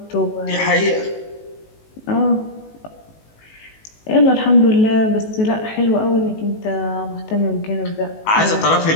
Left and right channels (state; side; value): late; right; 19 ms